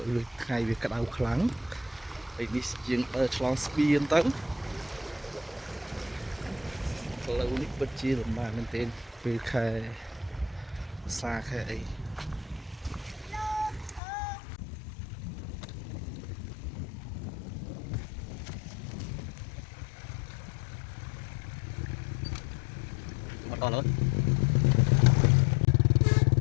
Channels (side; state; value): right; drops out; at 14.0 s